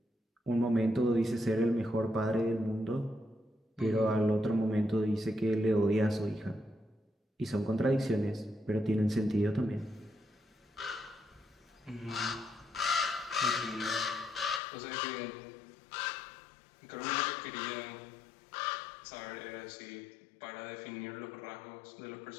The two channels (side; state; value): right; drops out; at 14.6 s